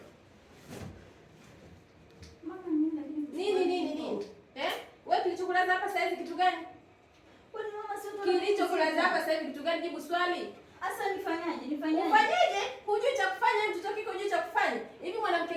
nini? Wewe kilichokulaza hapa sasa hivi kitu gani? Kwani mama sio Kilichokulaza hapa sasa hivi kitu gani? Jibu swali. Asa nifanyaje? Ufanyeje? Hujui cha kufanya, mtoto kiko hujui cha kufanya. Hivi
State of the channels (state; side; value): identical; both; correlation 1.00